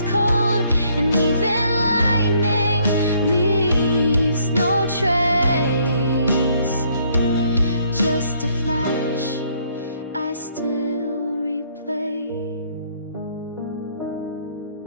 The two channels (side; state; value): both; inverted; correlation -0.66